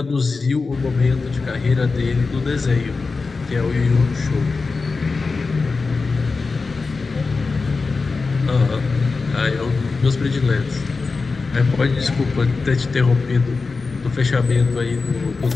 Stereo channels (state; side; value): quieter; right; 4.2 dB